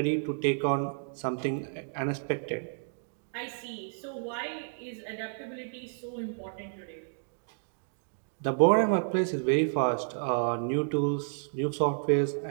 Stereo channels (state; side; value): silent; left; digital silence